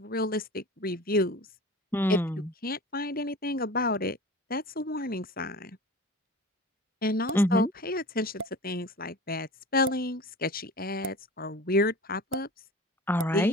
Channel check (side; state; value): both; normal; correlation 0.37